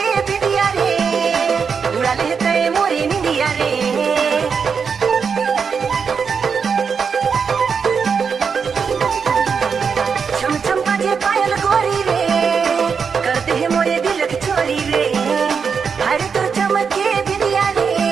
बिंदिया रे, उड़ा लेते मोरे निंदिया रे। छम छम बाजे पायल गोरी रे, करते हैं मोरे दिलक चोरी रे, हाय तो चमके बिंदिया रे,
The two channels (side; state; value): left; quieter; 6.0 dB